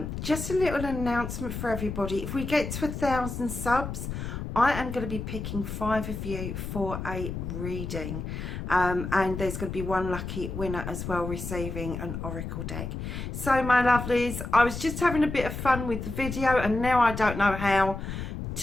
Just a little announcement for everybody. If we get to 1,000 subs, I am going to be picking 5 of you for a reading, and there's going to be one lucky winner as well receiving an oracle deck. So my lovelies, I was just having a bit of fun with the video and now I don't know how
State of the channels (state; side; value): noise; left; rumble, 6 dB below the sound